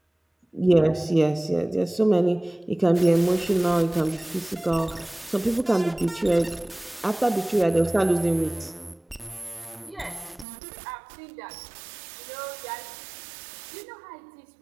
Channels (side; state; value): left; drops out; at 10.5 s